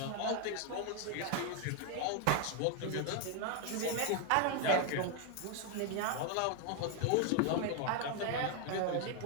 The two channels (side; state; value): both; different; correlation 0.01